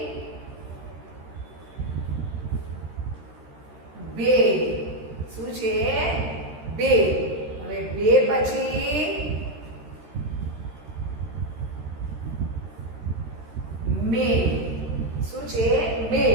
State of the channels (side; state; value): left; late; 13 ms